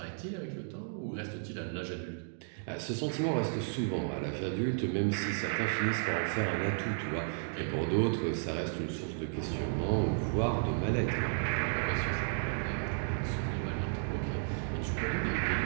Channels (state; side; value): silent; left; digital silence